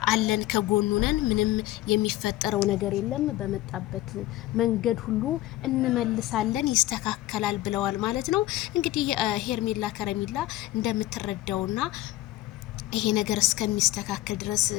አለን ከጎኑ ነን፣ ምንም የሚፈጠረው ነገር የለም፣ በመጣበት መንገድ ሁሉ እንመልሳለን፣ ይስተካከላል ብለዋል ማለት ነው። እንግዲህ ሄርሜላ ከረሜላ እንደምትረዳውና ይሄ ነገር እስከሚስተካከል ድረስ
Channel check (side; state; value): right; quieter; 15.9 dB